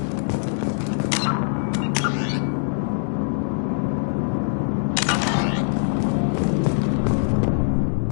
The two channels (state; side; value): silent; right; digital silence